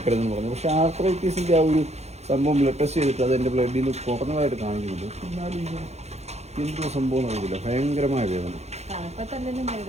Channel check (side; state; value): left; late; 0.31 ms